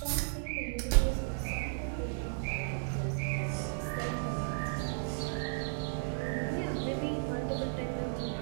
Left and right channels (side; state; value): left; silent; digital silence